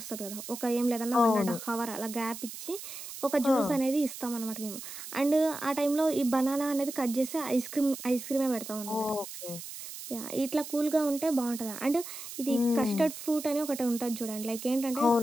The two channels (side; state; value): right; noise; hiss, 11 dB below the sound